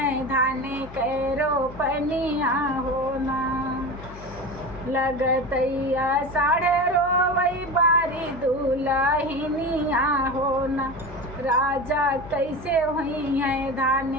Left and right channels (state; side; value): noise; left; hum, 15 dB below the sound